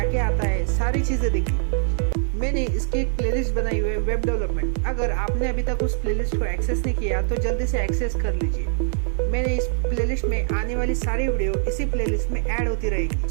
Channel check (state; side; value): silent; left; digital silence